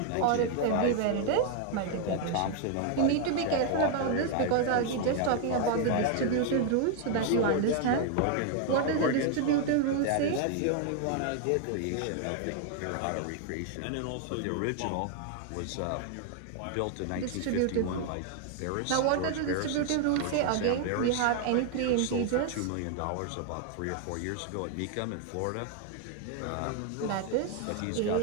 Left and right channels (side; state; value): both; different; correlation 0.00